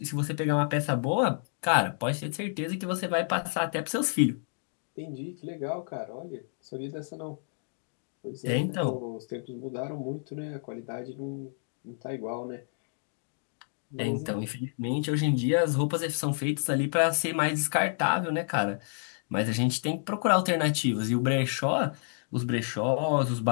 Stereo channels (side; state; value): right; silent; digital silence